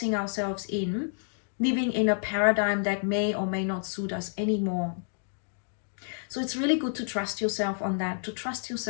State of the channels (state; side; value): silent; right; digital silence